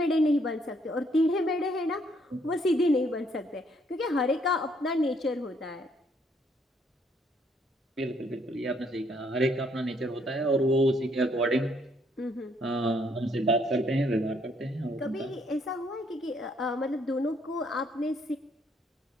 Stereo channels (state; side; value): normal; both; correlation 0.68